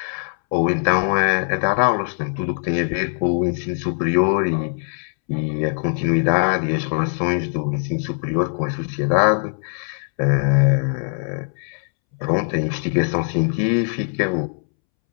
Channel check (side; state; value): right; silent; 65 dB below the other